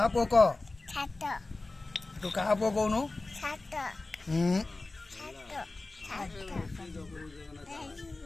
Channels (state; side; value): quieter; right; 3.2 dB